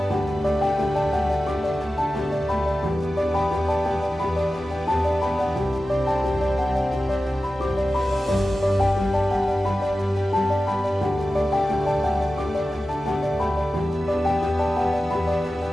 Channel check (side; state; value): both; normal; correlation 0.94